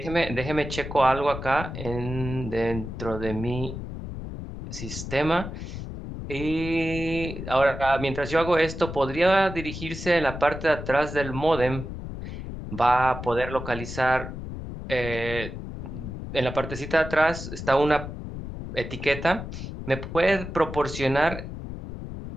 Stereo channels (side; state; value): left; noise; rumble, 8 dB below the sound